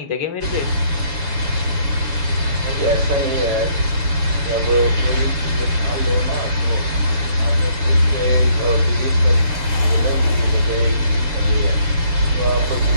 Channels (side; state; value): left; late; 6.9 ms